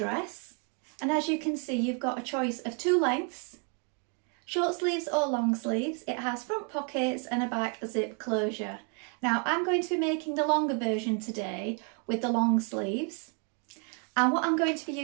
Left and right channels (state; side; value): quieter; left; 39.3 dB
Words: And as you can see, you've got a choice of two lengths, short sleeves or long sleeves. It has front pockets and a back zip closure. Now I'm going to be making the longer version today with the long sleeves. And what I'm going to be